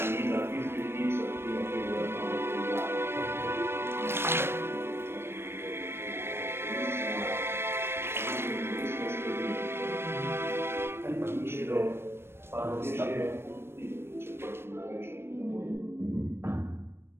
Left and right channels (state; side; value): late; left; 0.12 ms